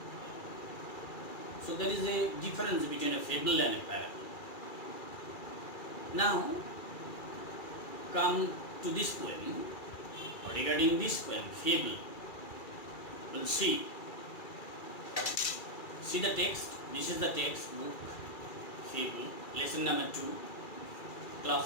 So there is a difference between a fable and a parable. Now, come to this poem, or regarding this poem, Fable. We'll see. See the text. This is the text book, Fable, lesson number 2,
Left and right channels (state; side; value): late; right; 2.4 ms